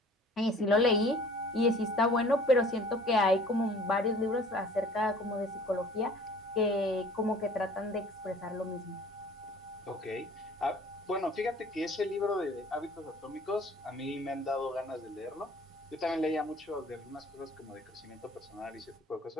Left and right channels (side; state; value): both; normal; correlation 0.50